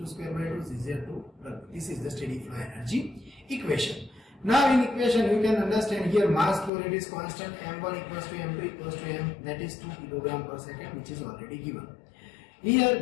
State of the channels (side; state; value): right; drops out; at 6.7 s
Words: square by 2 ZZ2. This is the steady flow energy equation. Now in equation you can understand here mass flow rate is constant, M1 equals to M2 equals to M, that is 2 kg per second, which is already given. Here